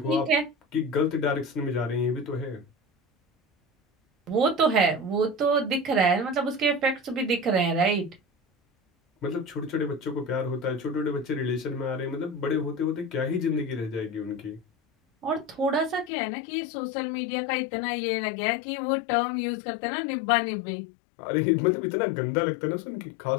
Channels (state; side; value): drops out; right; at 16.1 s